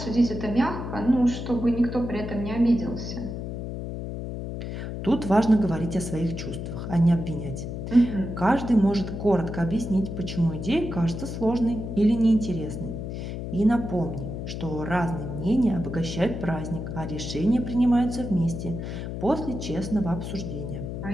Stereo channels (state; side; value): noise; left; hum, 6 dB below the sound